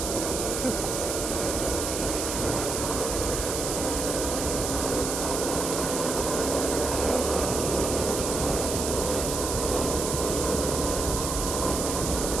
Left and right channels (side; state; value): right; noise; hiss, 3 dB below the sound